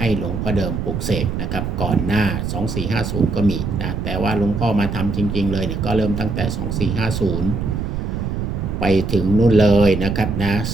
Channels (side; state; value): right; noise; rumble, 3 dB below the sound